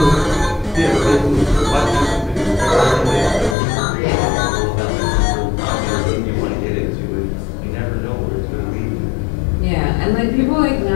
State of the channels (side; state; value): right; drops out; at 3.6 s